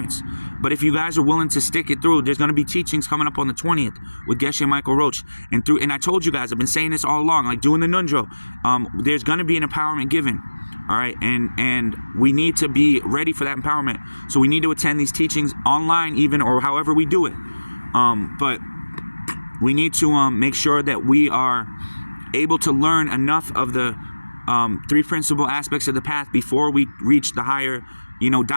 But if you guys are willing to stick it through, there's going to be teachings coming up on the 20th with Geshe Michael Roach. And I told you guys, I've been saying this all along, like doing the Nundro. There's going to be an empowerment given. All right. And we need to be ready for that empowerment. So we need to attend these teachings online, even, or however we do it. But we need to make sure that we are able to learn enough of the three principal aspects of the path before we reach the higher,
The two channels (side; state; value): both; inverted; correlation -1.00